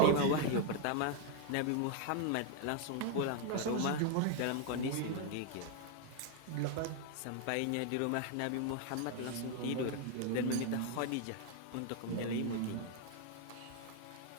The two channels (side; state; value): both; different; correlation 0.01